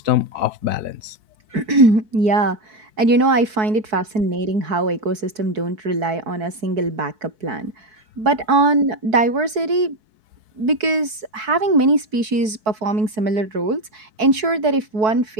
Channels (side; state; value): left; late; 4.6 ms